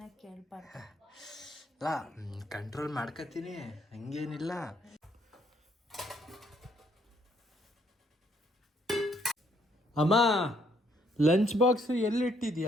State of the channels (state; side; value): normal; both; correlation 0.69